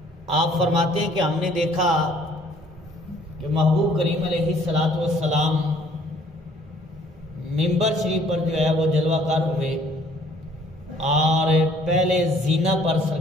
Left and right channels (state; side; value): normal; both; correlation 0.59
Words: آپ فرماتے ہیں کہ ہم نے دیکھا کہ محبوب کریم علیہ السلام منبر شریف پر جو ہے وہ جلوہ کر ہوئے، اور پہلے زینہ پر